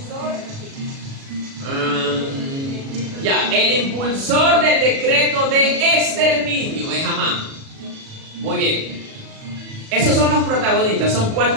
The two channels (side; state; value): left; late; 37 ms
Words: El impulsor del decreto de exterminio es Amán. Muy bien. Esos son los protagonistas, son